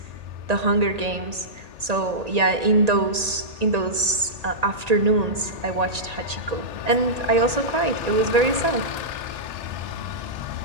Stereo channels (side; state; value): left; late; 1.9 ms